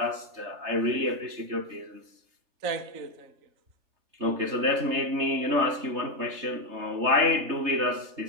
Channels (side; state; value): left; late; 3.3 ms